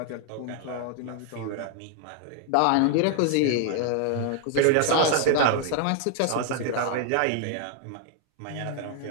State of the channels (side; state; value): both; different; correlation 0.00